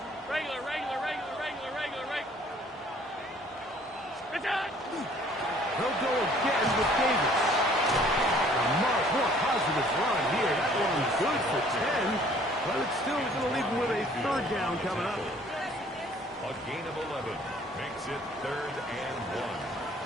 Regular. They'll go again with Davis. A much more positive run here. That one's good for 10. But it's still going to leave him with a third down coming up. A gain of 11 makes it third and 1.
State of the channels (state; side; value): normal; both; correlation 0.57